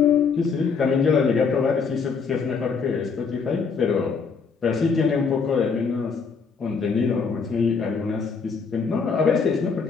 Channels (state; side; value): quieter; right; 5.4 dB